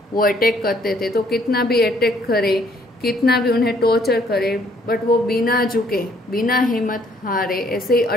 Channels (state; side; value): normal; both; correlation 0.64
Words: वो अटैक करते थे तो कितना भी अटैक करे, कितना भी उन्हें टॉर्चर करे, बट वो बिना झुके बिना हिम्मत हारे ऐसे ही